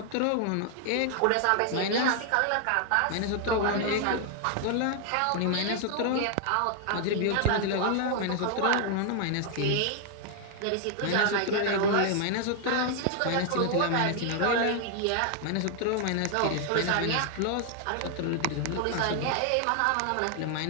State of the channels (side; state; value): both; different; correlation 0.00